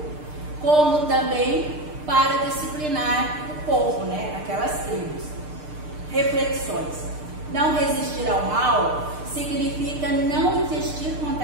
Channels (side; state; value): left; late; 6.6 ms